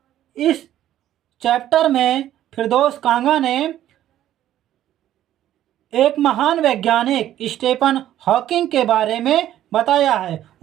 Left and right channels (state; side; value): quieter; left; 12.4 dB